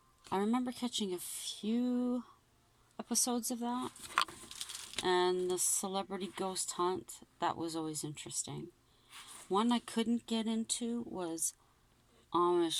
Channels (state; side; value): identical; both; correlation 1.00